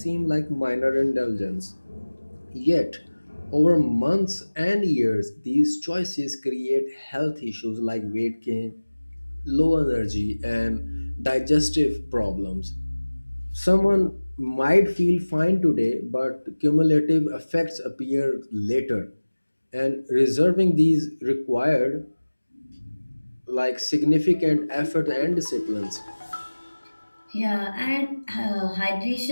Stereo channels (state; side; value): inverted; both; correlation -1.00